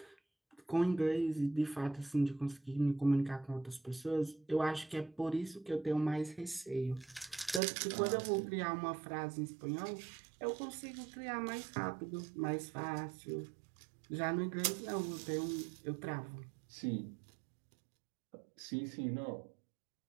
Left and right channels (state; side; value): drops out; left; at 7.6 s